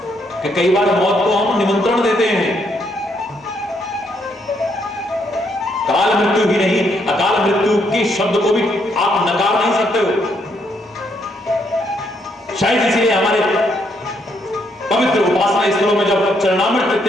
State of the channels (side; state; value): both; normal; correlation 0.74